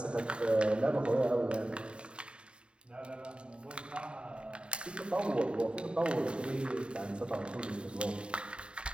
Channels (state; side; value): late; left; 0.054 ms